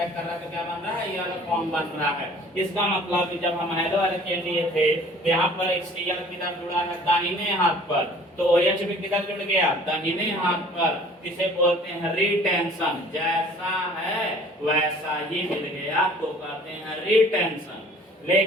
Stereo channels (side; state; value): both; normal; correlation 0.51